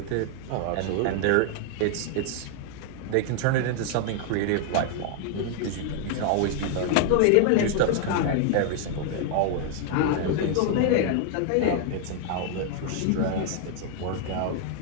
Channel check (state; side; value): different; both; correlation 0.00